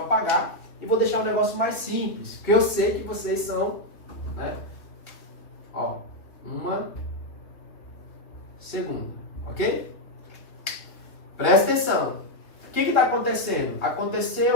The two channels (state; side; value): late; right; 2.4 ms